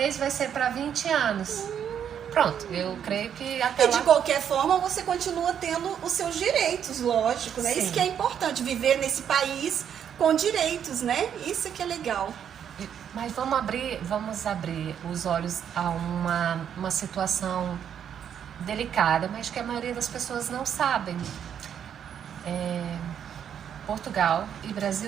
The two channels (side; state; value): left; quieter; 8.7 dB